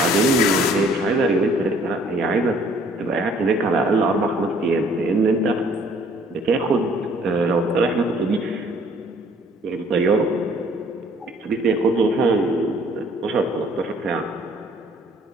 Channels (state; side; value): normal; both; correlation 0.58